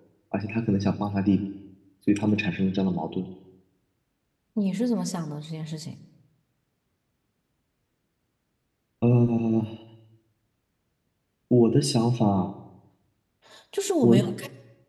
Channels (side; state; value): both; identical; correlation 1.00